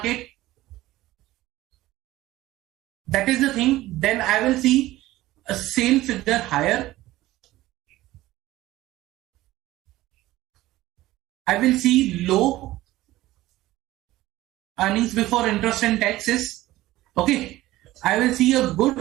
that is the thing, then I will see a sale figure higher. I will see low earnings before interest and taxes. Okay, I will see a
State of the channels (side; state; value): left; quieter; 16.7 dB